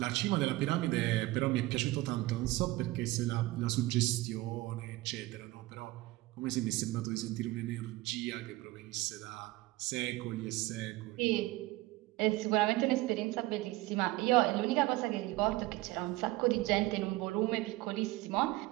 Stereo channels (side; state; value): left; quieter; 19.1 dB